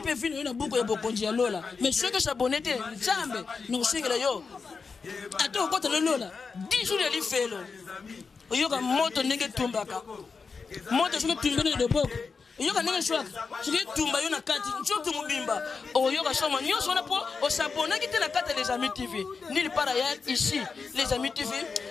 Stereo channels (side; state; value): right; quieter; 5.0 dB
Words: peut finir une boucle de bokonji lola. Mais ceux qui s'abonnent Nzambe, nous single yo. Attends quand le lola. 10 jours de l'ifelo. Yoka moto nenge tumbaka. Moto je tumbene de boko. Yoka nenge swak. Je tumba yo na kati. Njo tumubimba. O yoka soma nyonso na po o s'abonner qui te la carte les amis TV. Nulle part ailleurs ici les amis TV.